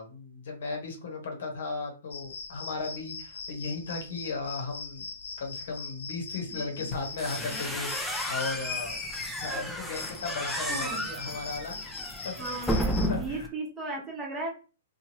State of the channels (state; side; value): normal; both; correlation -0.05